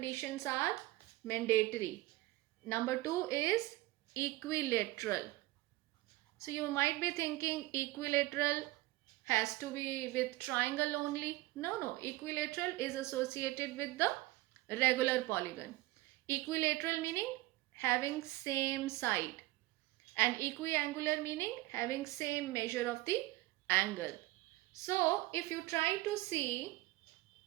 are mandatory. Number two is equilateral. So you might be thinking equilateral has to be with triangle only. No, equilateral is associated with the regular polygon. Equilateral meaning having same side, and equiangular meaning having same measure of the angle. So if you try to see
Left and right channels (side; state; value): left; quieter; 18.8 dB